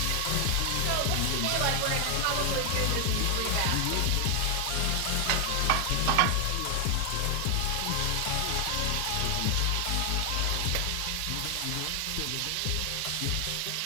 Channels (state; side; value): different; both; correlation 0.00